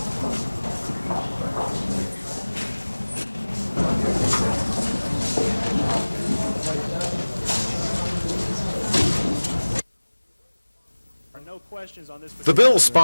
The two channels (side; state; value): both; inverted; correlation -1.00